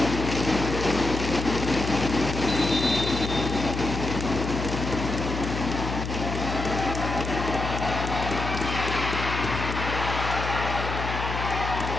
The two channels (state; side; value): noise; left; hum, 4 dB below the sound